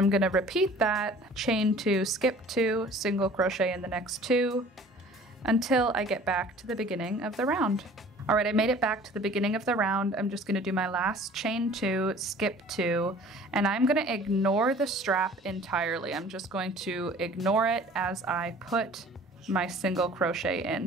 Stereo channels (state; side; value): normal; both; correlation 0.48